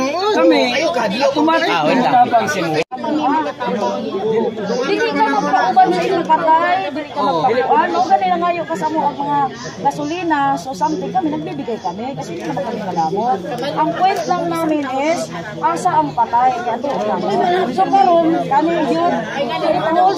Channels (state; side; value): identical; both; correlation 1.00